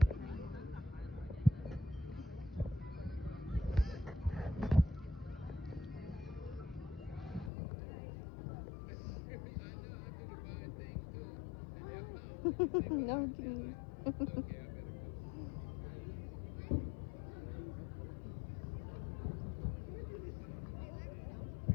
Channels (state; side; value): drops out; right; at 7.5 s